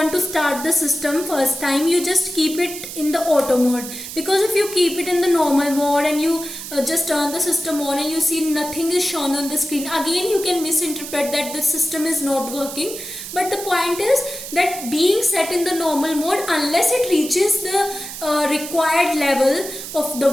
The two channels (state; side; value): noise; right; hiss, 10 dB below the sound